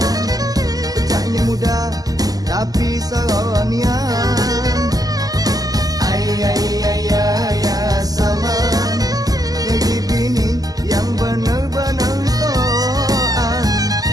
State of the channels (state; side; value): late; left; 0.18 ms